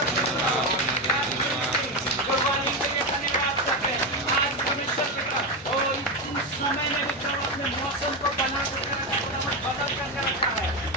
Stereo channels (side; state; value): both; normal; correlation 0.12